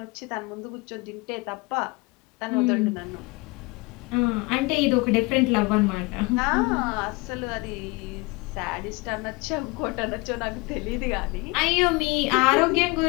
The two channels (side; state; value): right; quieter; 25.6 dB